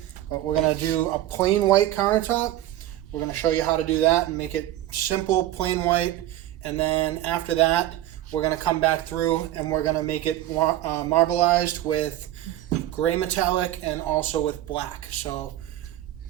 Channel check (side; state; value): left; quieter; 13.8 dB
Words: but we're gonna do a plain white countertop. We're gonna show you how to do that and make it simple, plain white. And then after that, we're gonna come back through and we're gonna make it marbleized with gray metallic and also with black. So